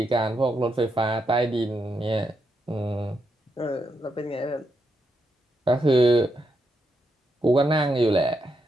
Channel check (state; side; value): normal; both; correlation 0.82